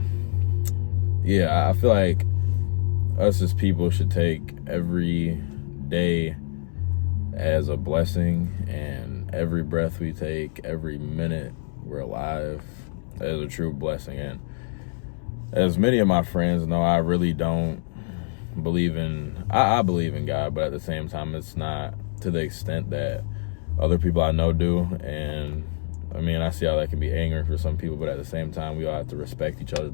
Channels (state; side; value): silent; right; digital silence